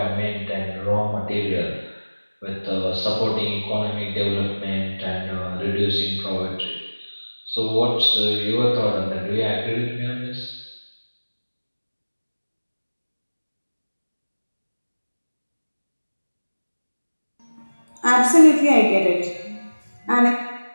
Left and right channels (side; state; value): both; inverted; correlation -1.00